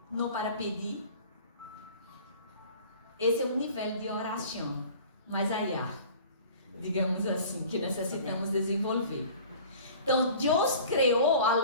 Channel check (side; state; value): both; inverted; correlation -0.45